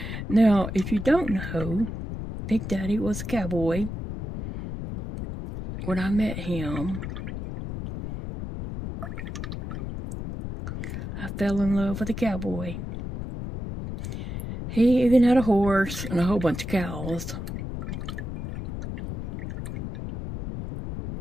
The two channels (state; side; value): noise; left; rumble, 6 dB below the sound